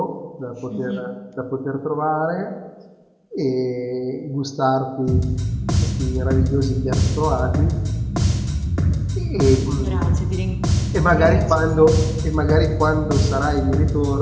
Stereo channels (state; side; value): identical; both; correlation 1.00